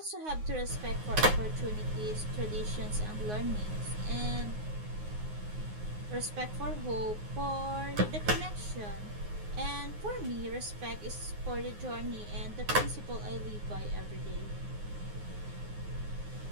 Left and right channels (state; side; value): late; left; 9.6 ms